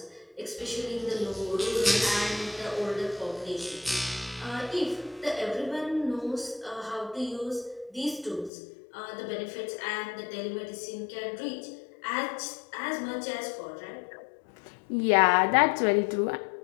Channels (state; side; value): drops out; right; at 8.5 s